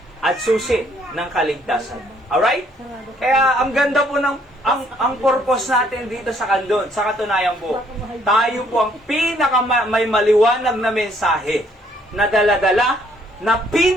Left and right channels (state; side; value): normal; both; correlation 0.66